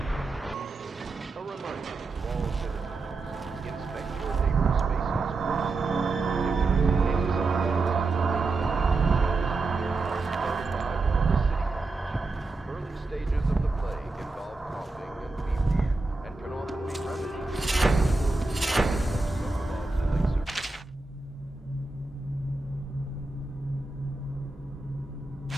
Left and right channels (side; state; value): left; quieter; 3.5 dB